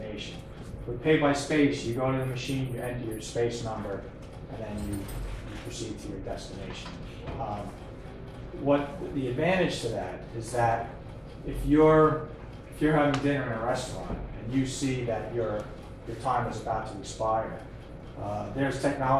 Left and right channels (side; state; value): both; identical; correlation 1.00